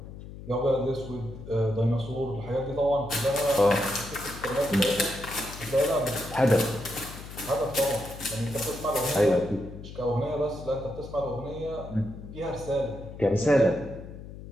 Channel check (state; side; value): noise; left; hum, 13 dB below the sound